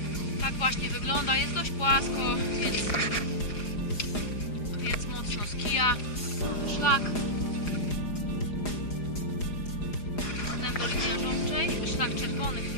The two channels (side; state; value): right; late; 4.9 ms